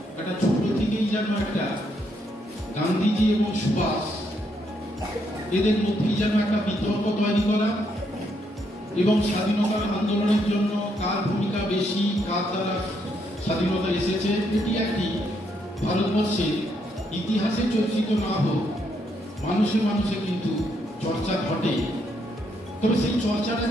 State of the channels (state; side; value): normal; both; correlation 0.75